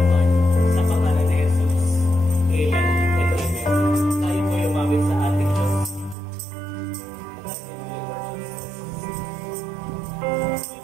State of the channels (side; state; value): left; drops out; at 6.2 s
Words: sa pangalan ni Jesus. Amen and amen. Tayo po umawit sa ating Diyos.